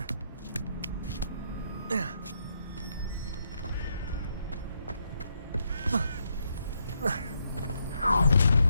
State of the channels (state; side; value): inverted; both; correlation -0.77